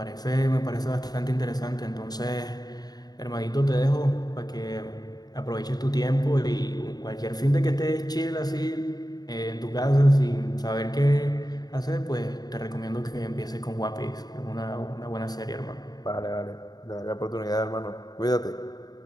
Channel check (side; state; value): right; late; 0.19 ms